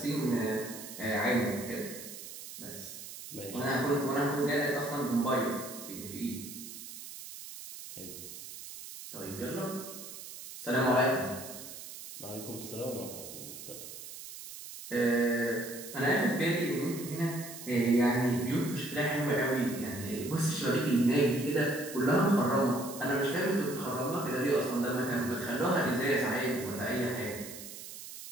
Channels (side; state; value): right; noise; hiss, 12 dB below the sound